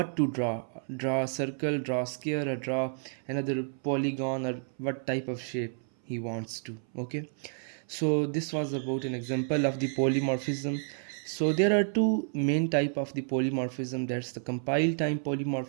to draw a circle, draw a square, or draw another polygon, or what type of shape he wants to. Okay, so this was about an example of the polymorphism. So there are two main type of the polymorphism, that's the compile time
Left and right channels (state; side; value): silent; left; 58 dB below the other